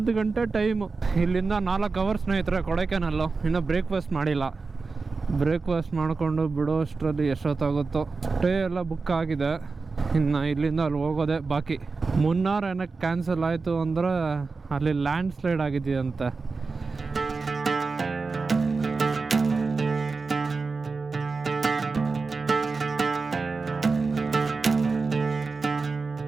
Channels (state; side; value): quieter; left; 4.3 dB